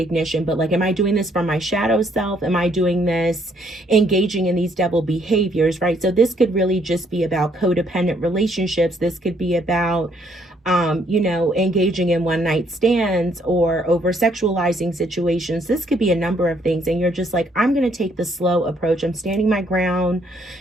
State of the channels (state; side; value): normal; both; correlation 0.68